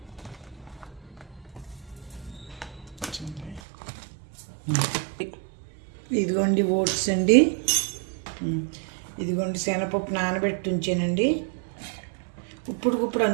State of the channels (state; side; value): drops out; left; at 3.6 s